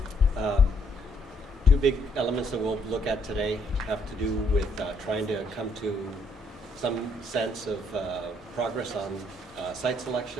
Two big elements that we'll look at today have to do with trying to come to some sense of progress on site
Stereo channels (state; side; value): normal; both; correlation 0.69